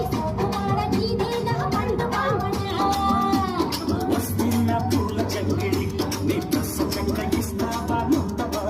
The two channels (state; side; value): identical; both; correlation 1.00